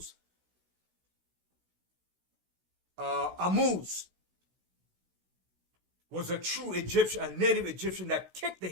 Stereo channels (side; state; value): left; late; 16 ms